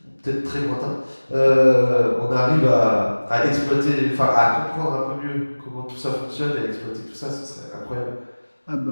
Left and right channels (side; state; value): both; inverted; correlation -1.00